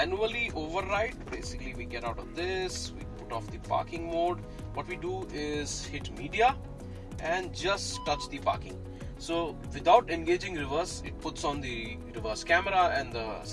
override, basically we get out of this, we put off the parking mode. What we do is hit media and just touch the parking. So without engaging reverse, it puts on the reverse camera and the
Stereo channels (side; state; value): both; identical; correlation 1.00